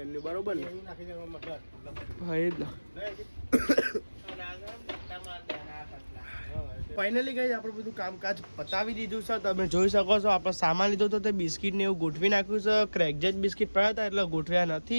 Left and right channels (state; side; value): inverted; both; correlation -1.00